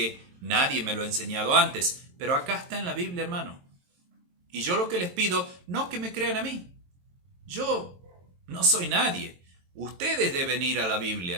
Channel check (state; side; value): late; left; 22 ms